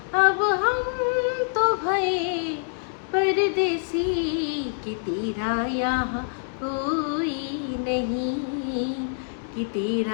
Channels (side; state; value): right; silent; digital silence